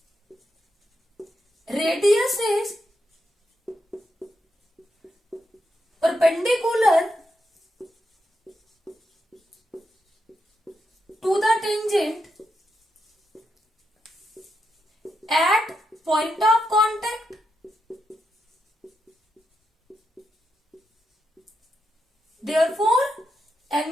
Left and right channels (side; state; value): both; normal; correlation 0.84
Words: radius is perpendicular to the tangent at point of contact, therefore